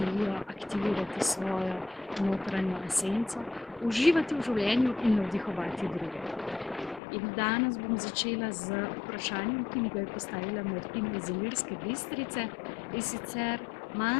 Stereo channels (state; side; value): drops out; right; at 7.0 s